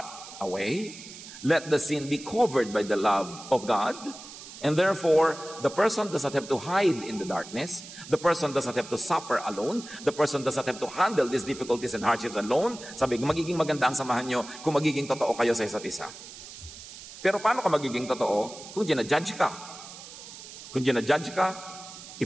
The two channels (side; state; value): right; noise; hiss, 15 dB below the sound